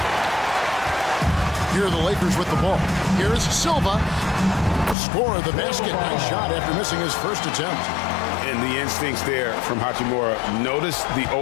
Here are the Lakers with the ball. Here's Silva. Score of the basket. Nice shot after missing his first attempt. And the instincts there from Hachimura. Notice the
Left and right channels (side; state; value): right; drops out; at 5.0 s